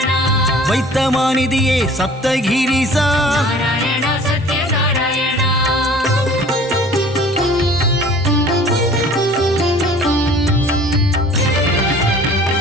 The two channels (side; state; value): both; normal; correlation 0.48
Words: வைத்தமாநிதியே சப்தகிரிசா நாராயண சத்ய நாராயண